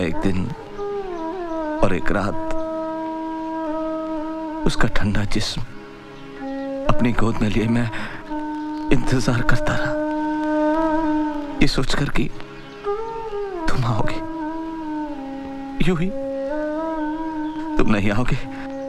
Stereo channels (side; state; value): both; identical; correlation 1.00